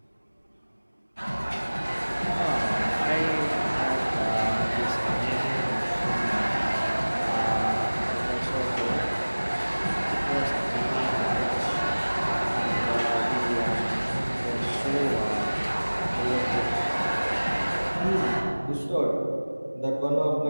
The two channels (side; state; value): both; inverted; correlation -1.00